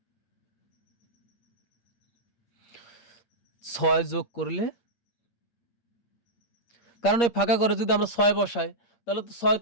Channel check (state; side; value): late; right; 8.5 ms